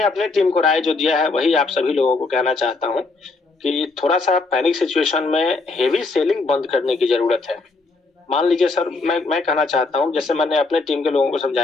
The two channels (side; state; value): right; quieter; 3.7 dB